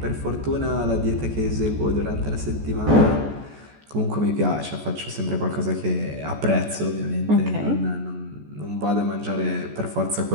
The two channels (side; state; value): left; late; 14 ms